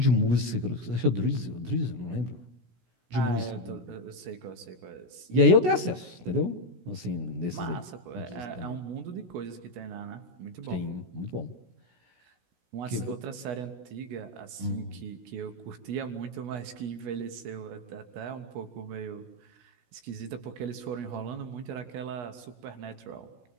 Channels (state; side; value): late; left; 16 ms